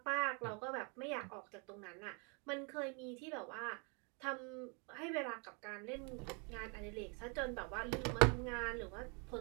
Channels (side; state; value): left; quieter; 34.4 dB